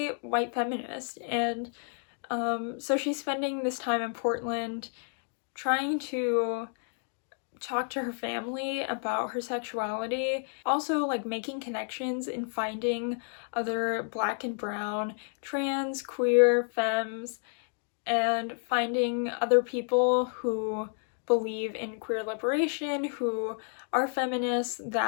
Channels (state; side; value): silent; right; 56 dB below the other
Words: white feminist, and so she's spending this time in Portland trying to talk to her family about her sexuality, also like making connections and finding other Black and brown, trans, queer, femmes, and finding other people who believe in queer liberation, who are feminists,